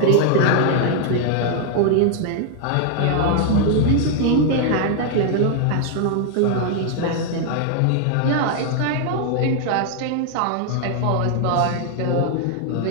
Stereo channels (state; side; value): different; both; correlation 0.00